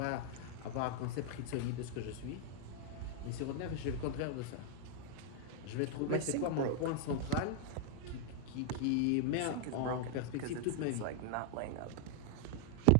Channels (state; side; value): different; both; correlation 0.00